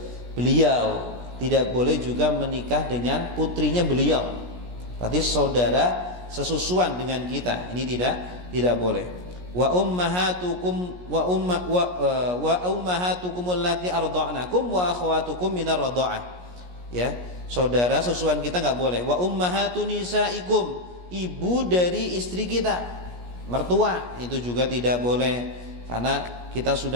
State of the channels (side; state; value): left; late; 17 ms